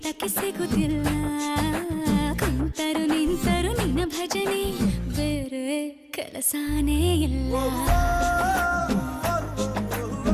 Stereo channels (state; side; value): identical; both; correlation 1.00